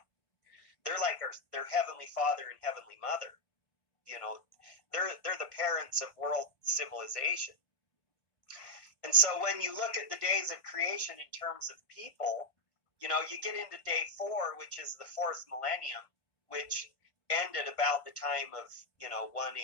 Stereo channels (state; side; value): late; right; 1.2 ms